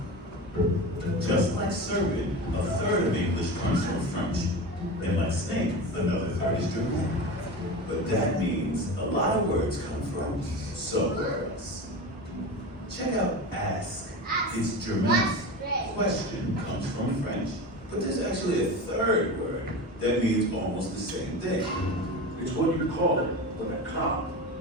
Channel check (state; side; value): normal; both; correlation 0.27